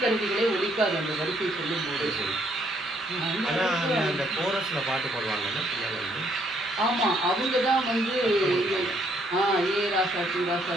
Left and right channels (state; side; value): normal; both; correlation 0.68